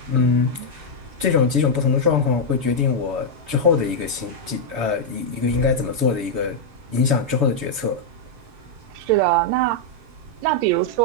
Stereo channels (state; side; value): late; left; 7.1 ms